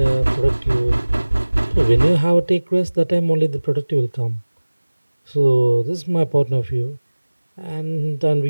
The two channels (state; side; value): inverted; both; correlation -1.00